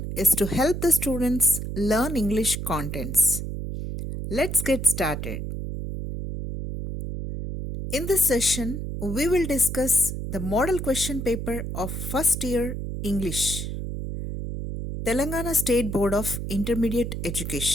is to help the students learn English contents. Let's get started. In this session, we will discuss the model question paper of first year English, Telangana State Board of Intermediate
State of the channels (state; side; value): noise; right; hum, 5 dB below the sound